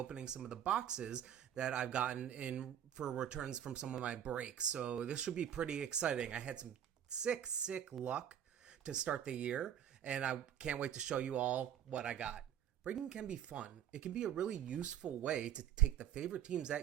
some of the boxes that I've gotten in for returns from some of my breaks. So this should be pretty exciting. I had some sick luck to start the year, and I can't wait to show you all what I got. Breaking can be fun. It can be a really useful way to take the favorite teams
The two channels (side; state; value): left; quieter; 9.9 dB